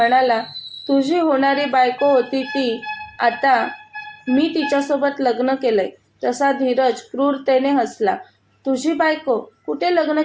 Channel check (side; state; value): both; identical; correlation 1.00